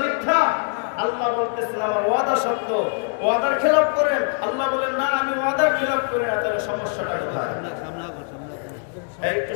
মিথ্যা? আল্লাহ বলতেছেন আমার ওয়াদা সত্য, ওয়াদার খেলাপ করেন। আল্লাহ বলেন না, আমি ওয়াদার খেলাপ করি না। তাহলে সমস্যাটা কোথায়? একটু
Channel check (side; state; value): right; silent; 58 dB below the other